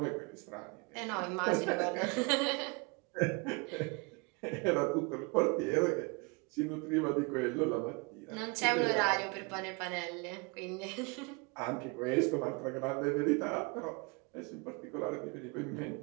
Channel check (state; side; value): quieter; left; 29.8 dB